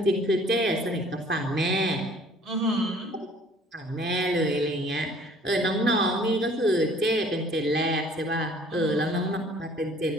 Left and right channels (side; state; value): both; normal; correlation 0.54